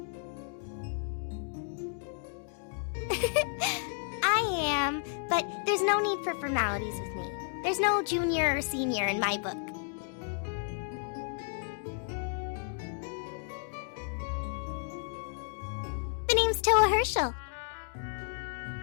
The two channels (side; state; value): right; silent; 56 dB below the other